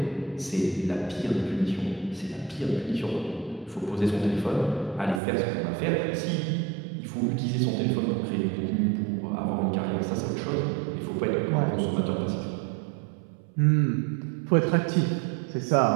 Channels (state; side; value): drops out; left; at 5.2 s